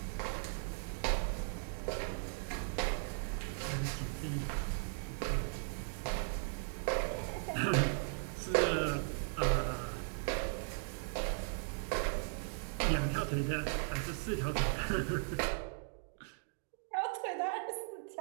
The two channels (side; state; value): left; silent; digital silence